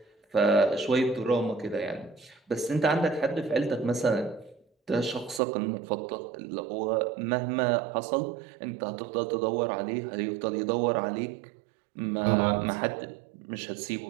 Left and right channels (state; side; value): drops out; left; at 5.4 s